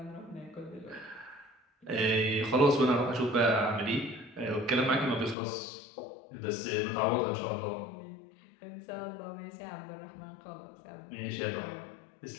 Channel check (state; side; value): drops out; right; at 5.4 s